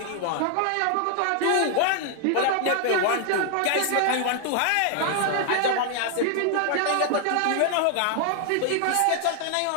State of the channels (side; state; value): both; different; correlation 0.00